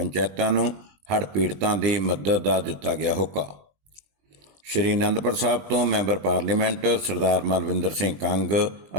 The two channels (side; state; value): left; late; 20 ms